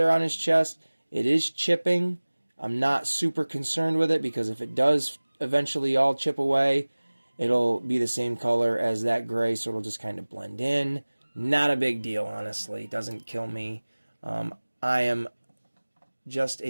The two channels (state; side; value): inverted; both; correlation -1.00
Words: on his chest. It is chipping. I'm not super concerned with it because if it does eventually all chip away, it'll be the same color as that gray, so it'll just kind of blend in. Not a big deal, honestly. It doesn't kill me. I am just